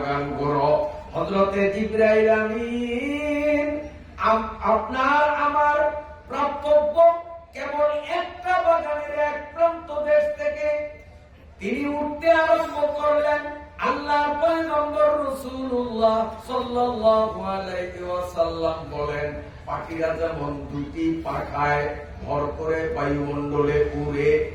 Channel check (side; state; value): both; identical; correlation 1.00